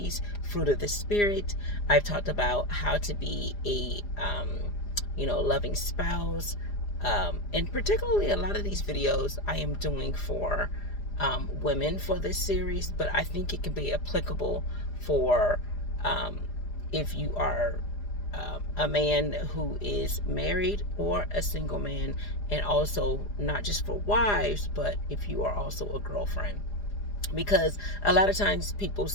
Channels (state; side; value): late; right; 4.9 ms